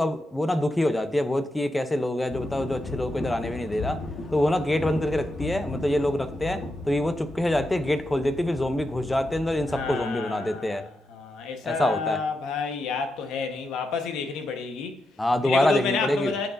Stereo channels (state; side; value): normal; both; correlation 0.86